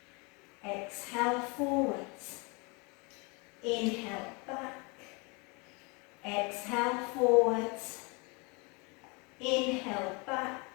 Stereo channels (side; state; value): right; quieter; 30.1 dB